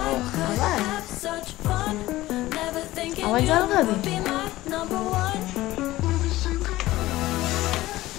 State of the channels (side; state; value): right; quieter; 16.9 dB